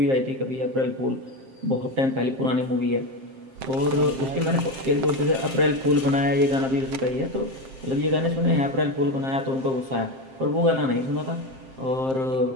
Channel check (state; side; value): late; left; 7.6 ms